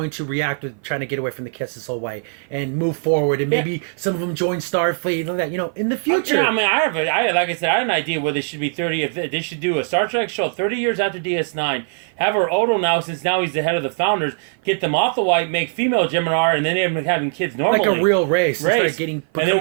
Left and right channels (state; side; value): silent; left; 55 dB below the other